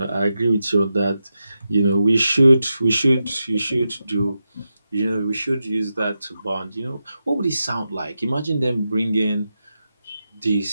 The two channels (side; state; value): both; inverted; correlation -0.88